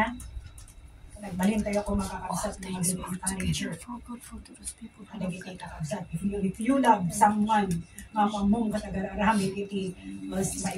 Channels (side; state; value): both; identical; correlation 1.00